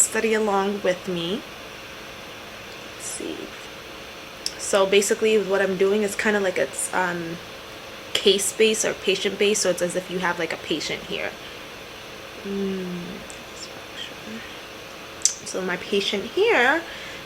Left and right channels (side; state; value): both; identical; correlation 1.00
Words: along with me. Let's see. So basically what I'm doing is kind of like it's case based or patient based. So it's as if you have like a patient here. So my patient here